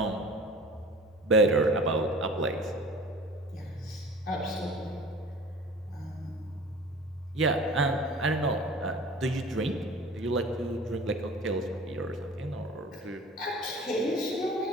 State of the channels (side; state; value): both; normal; correlation 0.42